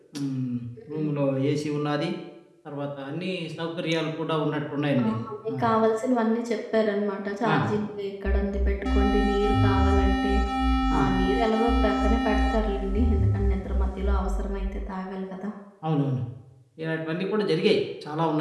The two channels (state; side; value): identical; both; correlation 1.00